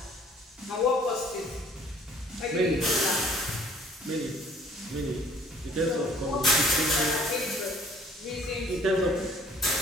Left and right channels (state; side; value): normal; both; correlation 0.56